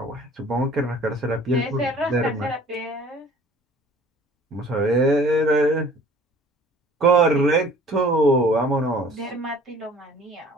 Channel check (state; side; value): normal; both; correlation 0.51